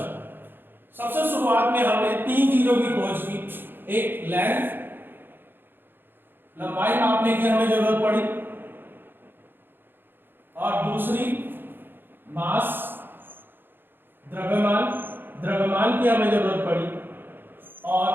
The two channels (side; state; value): left; late; 0.099 ms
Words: सबसे शुरुआत में हमने तीन चीजों की खोज की, एक लेंथ, लंबाई मापने की हमें जरूरत पड़ी, और दूसरी मास, द्रव्यमान की हमें जरूरत पड़ी,